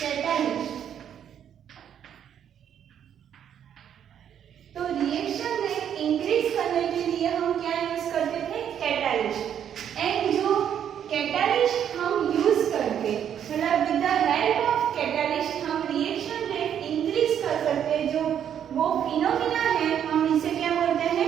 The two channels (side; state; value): left; quieter; 9.2 dB